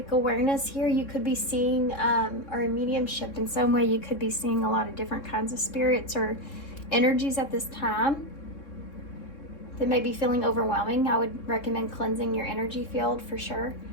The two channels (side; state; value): right; late; 3.7 ms